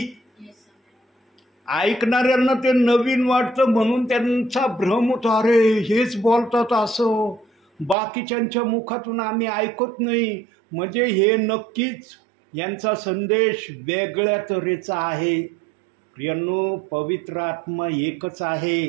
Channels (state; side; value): drops out; left; at 8.0 s